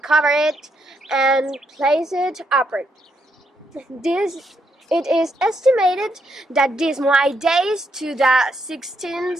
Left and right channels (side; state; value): both; normal; correlation 0.77